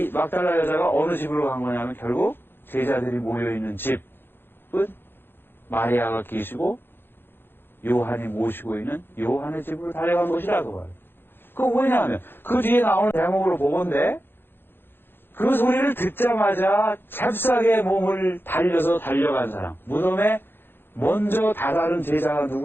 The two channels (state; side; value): late; right; 0.10 ms